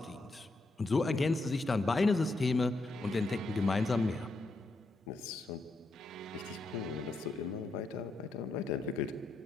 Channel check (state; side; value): quieter; right; 3.0 dB